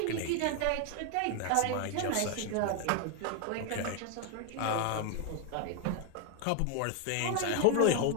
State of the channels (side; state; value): both; different; correlation 0.01